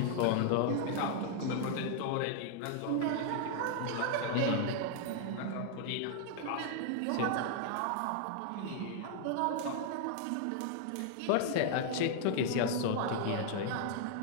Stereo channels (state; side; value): different; both; correlation 0.00